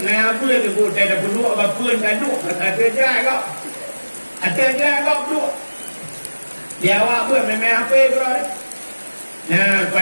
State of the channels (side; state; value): both; inverted; correlation -1.00